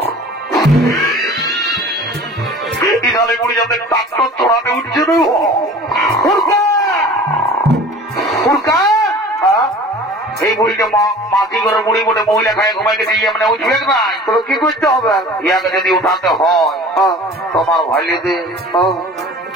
ইজালে বুড়ি যাতে ডাক্তার চড়াতে উঠছে না এই বুড়িকে মাঝি করে বুড়ি বলে মহিলা খায় ঘুমাইকে দিয়ে মানে উঠবে নাই তো কি করতে হবে ইয়াকে যদি উঠাতে হয় তোমার ভাইলিতে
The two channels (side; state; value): both; normal; correlation 0.43